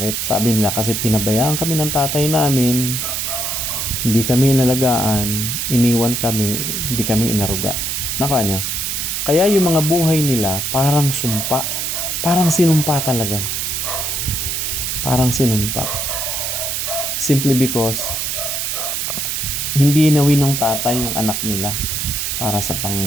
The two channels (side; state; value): right; noise; hiss, 1 dB below the sound